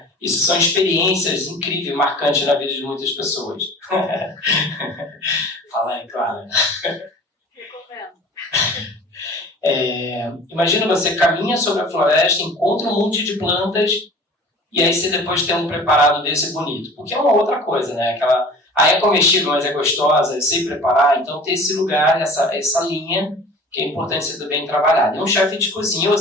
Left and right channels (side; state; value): both; normal; correlation 0.43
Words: Isso são experiências incríveis, marcantes na vida de muitas pessoas. Fala aí, Clara. Imagina você caminha sobre a floresta, encontra um monte de plantas e aí você depois tem um preparado desse bonito. Porque é uma outra coisa, né? É comestível, mas é gostosa, eu sei preparar. Então tem esse lugar, essa linha que é importante ser bem trabalhado. E um chefe de cozinha, ou